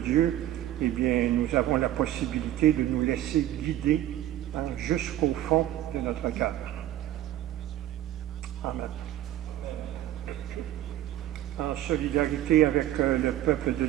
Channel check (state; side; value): quieter; left; 13.2 dB